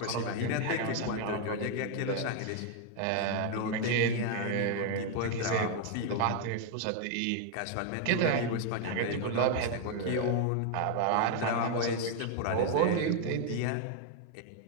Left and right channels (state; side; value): different; both; correlation 0.00